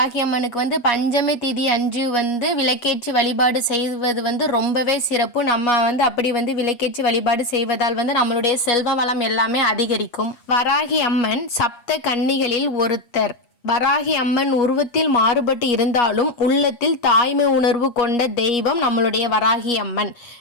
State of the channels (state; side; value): late; right; 8.4 ms